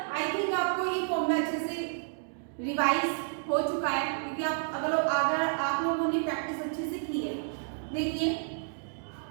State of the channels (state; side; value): silent; left; digital silence